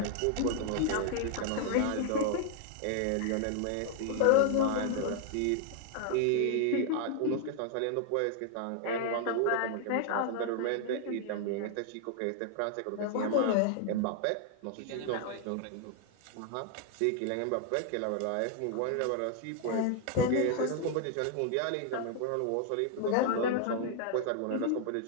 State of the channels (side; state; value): both; different; correlation 0.00